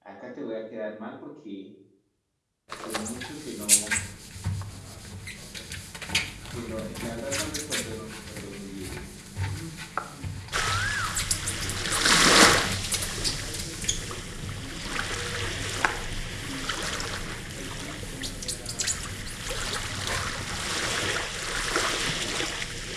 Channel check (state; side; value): identical; both; correlation 1.00